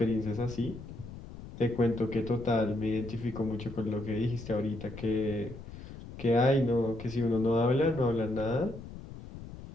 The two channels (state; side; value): noise; left; rumble, 13 dB below the sound